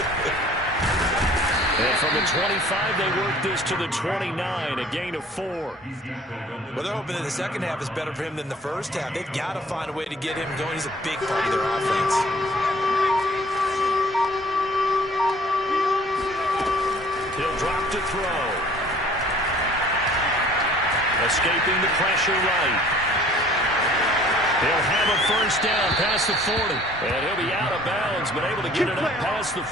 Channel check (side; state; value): both; normal; correlation 0.52